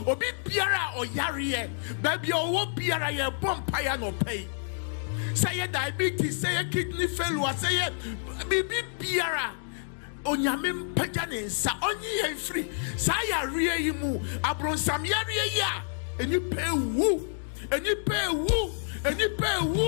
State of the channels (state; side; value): silent; right; digital silence